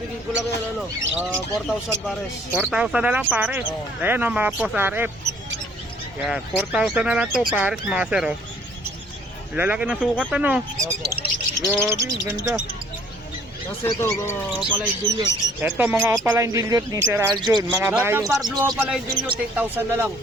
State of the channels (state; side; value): normal; both; correlation 0.58